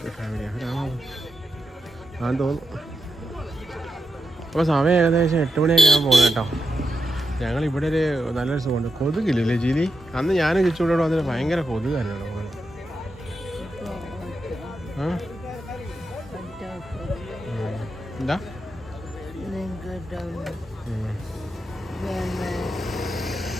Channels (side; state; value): both; normal; correlation 0.86